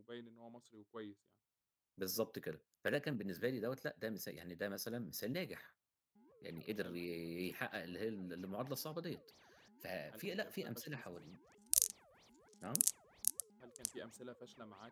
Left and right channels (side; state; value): both; identical; correlation 1.00